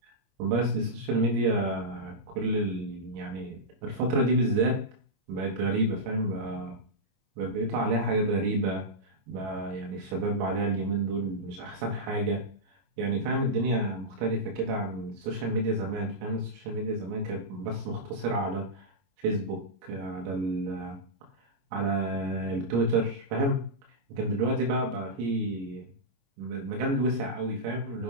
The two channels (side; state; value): left; late; 21 ms